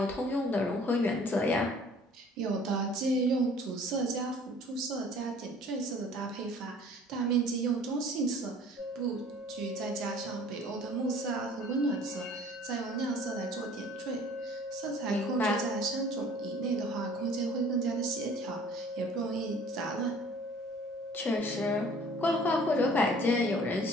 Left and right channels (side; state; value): both; normal; correlation 0.51